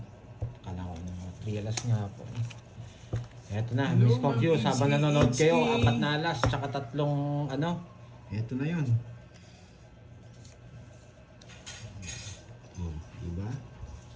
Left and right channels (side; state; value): both; identical; correlation 1.00